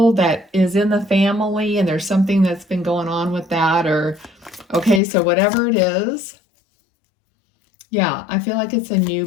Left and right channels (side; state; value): right; drops out; at 5.0 s